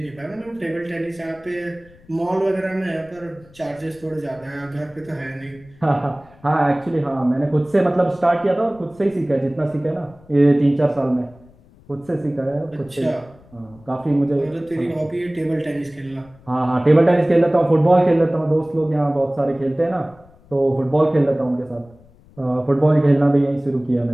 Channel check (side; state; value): left; noise; rumble, 26 dB below the sound